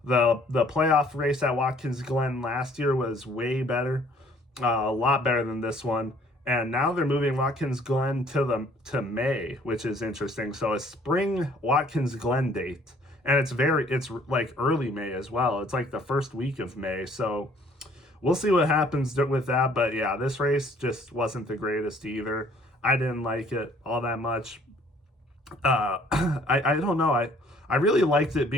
The playoff race at Watkins Glen last year was way better, a lot better than this one. And now they're moving Watkins Glen to May, which is interesting. So a spring Watkins Glen date, and it's like early May as well. It's like the first week of May. So we'll see what happens with that. But yeah, this race just wasn't the greatest either. I didn't like it all that much. I don't know. I really liked it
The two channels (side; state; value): both; normal; correlation 0.58